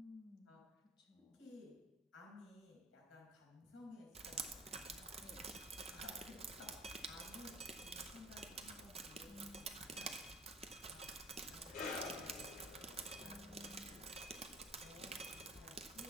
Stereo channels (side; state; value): both; normal; correlation 0.46